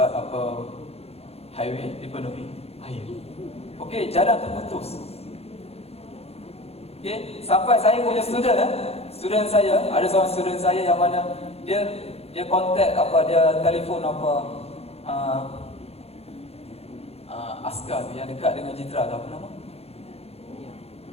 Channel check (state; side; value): late; right; 0.29 ms